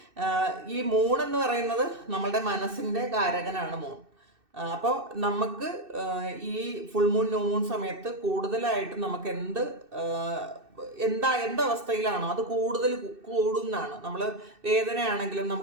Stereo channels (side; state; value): left; late; 2.6 ms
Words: ഈ മൂൺ എന്ന് പറയുന്നത് നമ്മളുടെ മനസ്സിൻ്റെ കാരകനാണ് മൂൺ. അപ്പോൾ നമുക്ക് ഈ ഫുൾ മൂൺ ന്യൂ മൂൺ സമയത്ത് കൂടുതലായിട്ട് നമുക്ക് എന്തവസ്ഥയിലാണോ അത് കൂടുതൽ കൂടുന്നതാണ്. നമ്മൾ വേദനയാണെങ്കിലും